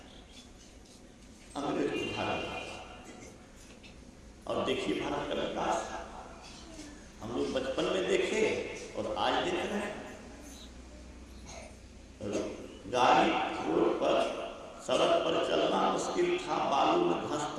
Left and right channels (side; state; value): both; identical; correlation 1.00